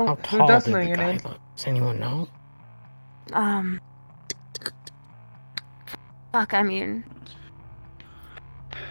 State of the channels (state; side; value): inverted; both; correlation -1.00